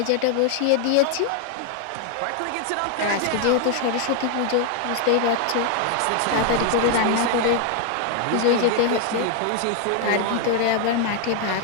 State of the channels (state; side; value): different; both; correlation 0.00